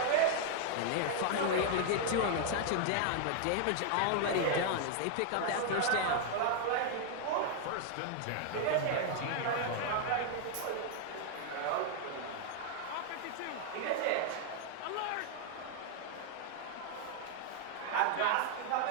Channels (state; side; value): different; both; correlation 0.00